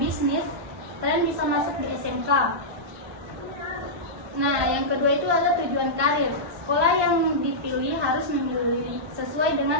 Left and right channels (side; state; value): left; late; 1.2 ms